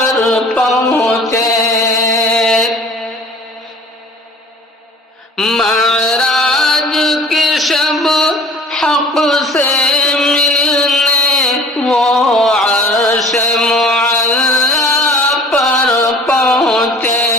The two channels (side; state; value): both; normal; correlation 0.48